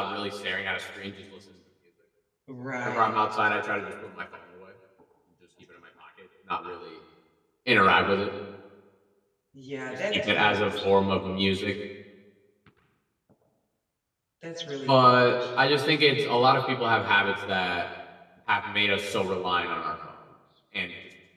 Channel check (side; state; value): both; identical; correlation 1.00